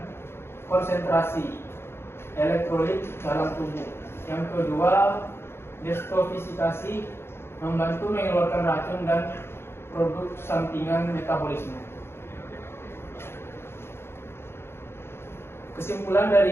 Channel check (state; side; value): late; right; 0.12 ms